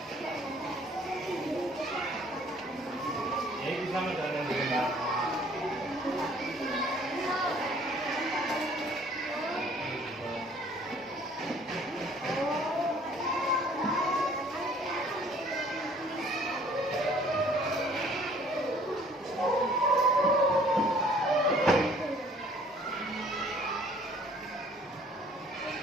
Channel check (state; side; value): normal; both; correlation 0.56